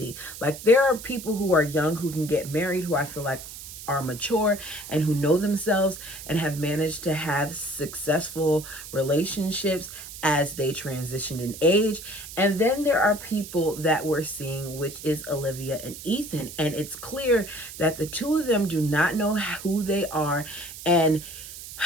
Like, there are people who are young who can get married who I feel like are mature and who know themselves and have managed to have successful relationships as they transitioned in age. And then there are people that we're seeing, which is Olivia and Ethan. And it's clear that the two of them do not know who they are. And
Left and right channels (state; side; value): noise; right; hiss, 13 dB below the sound